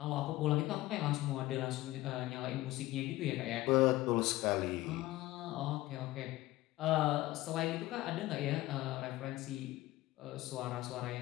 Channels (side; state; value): right; quieter; 17.5 dB